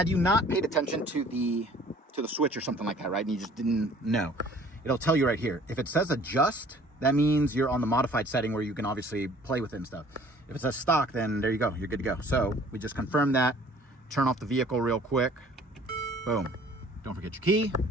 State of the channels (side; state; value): both; normal; correlation 0.53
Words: you not paid attention to the switch or something like that, right? And you just didn't know, it'll tell you right here. If it says adjust, that means you're on the modified setting where you can obviously play with it and stuff. If it says stock, then there you go. You're good to go. So we just confirmed that. Turn off the vehicle real quick. Boom. Don't forget your key.